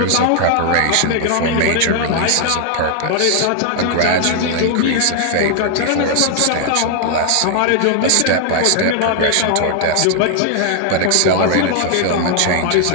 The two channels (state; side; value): different; both; correlation 0.00